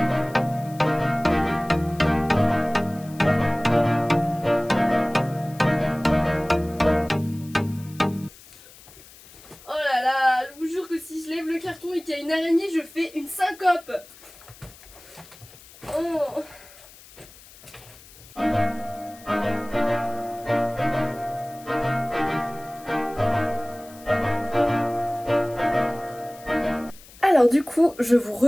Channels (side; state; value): left; noise; hiss, 22 dB below the sound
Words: Je vous jure que si je lève le carton et qu'il y a une araignée, je fais une syncope. Oh. Alors du coup, je vous